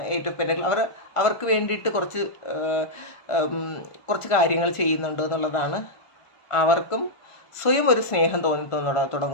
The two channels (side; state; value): right; late; 1.5 ms